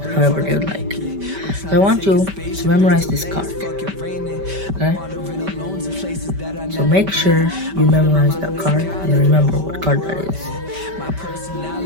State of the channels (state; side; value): late; left; 5.1 ms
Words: they would like. So I want you to memorize this card. Okay? So make sure you memorize that card and remember what card that is.